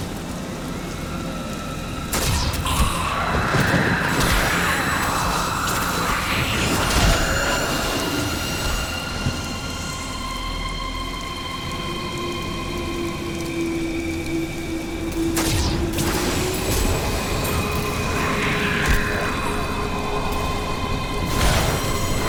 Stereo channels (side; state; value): both; identical; correlation 1.00